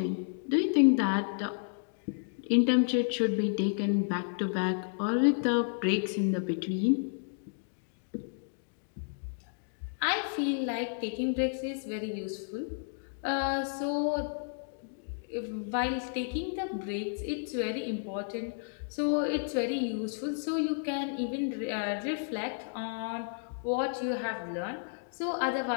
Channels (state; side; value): silent; right; digital silence